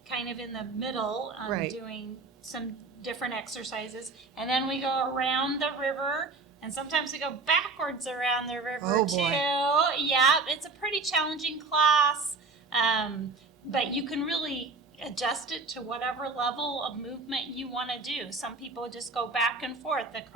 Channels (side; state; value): left; quieter; 4.0 dB